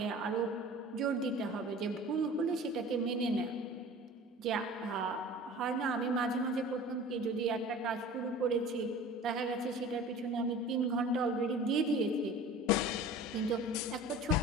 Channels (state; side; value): normal; both; correlation 0.41